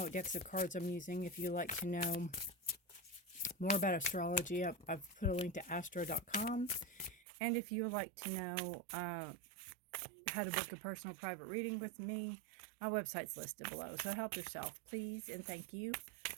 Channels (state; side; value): drops out; left; at 7.2 s